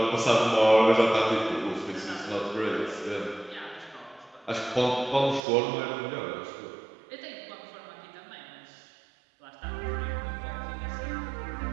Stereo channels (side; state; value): left; drops out; at 5.4 s